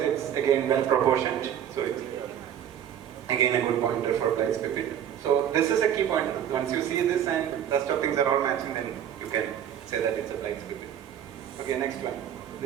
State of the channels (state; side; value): quieter; left; 9.8 dB